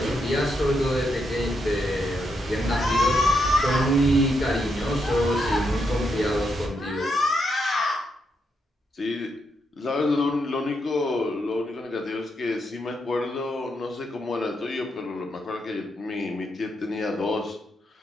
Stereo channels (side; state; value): both; normal; correlation 0.81